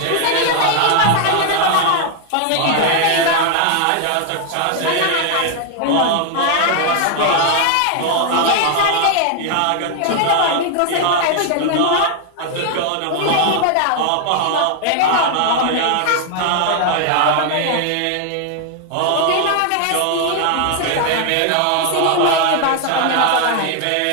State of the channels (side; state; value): both; different; correlation 0.00